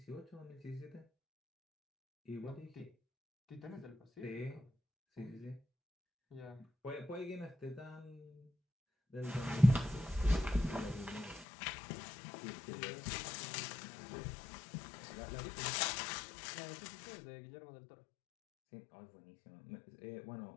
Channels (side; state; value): right; drops out; at 11.5 s